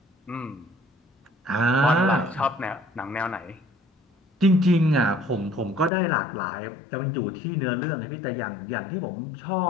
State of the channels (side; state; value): right; drops out; at 5.9 s